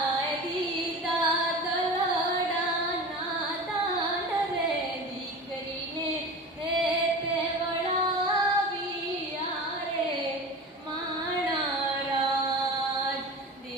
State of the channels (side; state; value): both; normal; correlation 0.32